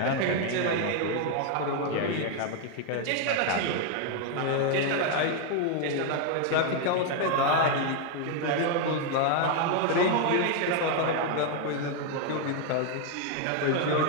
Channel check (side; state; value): both; different; correlation 0.01